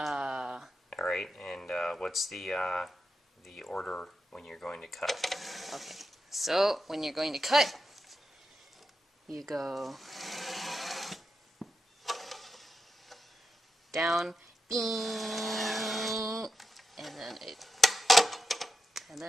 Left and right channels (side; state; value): both; normal; correlation 0.87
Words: and what's the order when you're going to cut? okay. So, when you're going to cut, you go down, bing, and